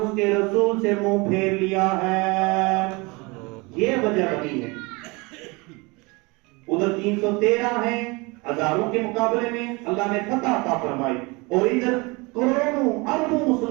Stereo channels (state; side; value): quieter; left; 26.3 dB